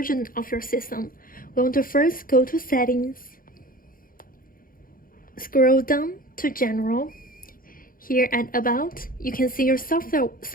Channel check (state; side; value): late; right; 0.41 ms